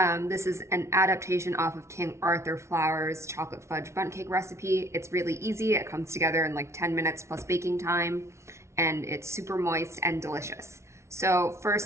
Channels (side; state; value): left; late; 0.13 ms